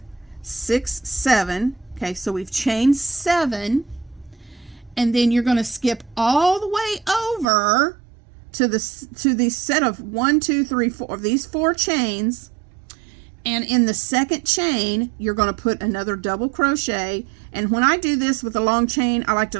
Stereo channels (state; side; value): drops out; left; at 7.5 s